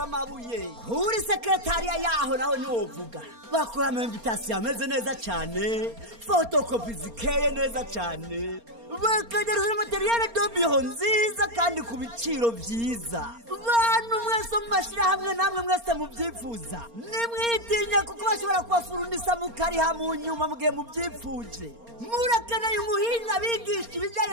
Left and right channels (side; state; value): left; late; 4.3 ms